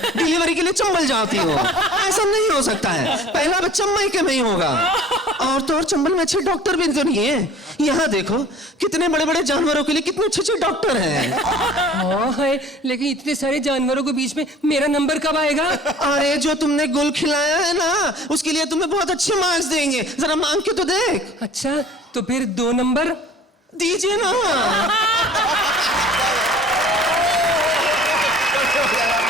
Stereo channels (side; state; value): both; normal; correlation 0.48